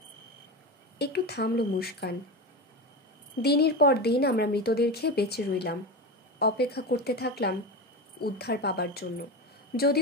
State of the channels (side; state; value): both; normal; correlation 0.21